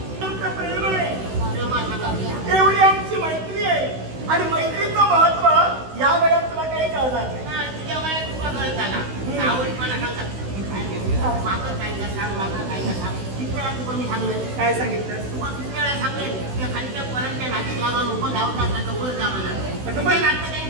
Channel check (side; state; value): left; late; 16 ms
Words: तुमचं प्रेम आहे, एवढी आमची मैत्री आहे आणि मैत्रीचं महत्व या वेळेत तुला काही कळणार नाही. तुझ्या वयात तुला कळत आला आवडपणा सांगतात मागं काय का सांग मागं काय का सांग. किती वेळा तुला मी सांगलं काय सांगितलं? तुम्हाला किती वेळा सांगेल त्या खालच्या पोरांच्या नातीत लागून उभं धावतात त्याचं वर जावं अगं बाई,